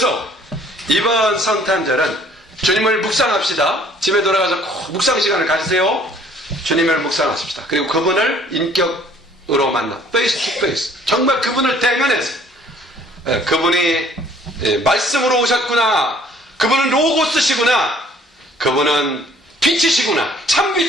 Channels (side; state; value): both; normal; correlation 0.57